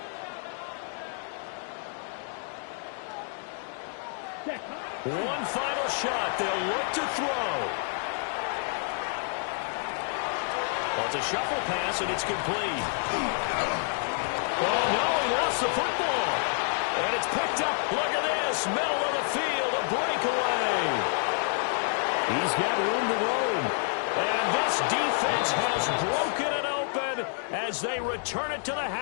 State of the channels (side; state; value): right; silent; 59 dB below the other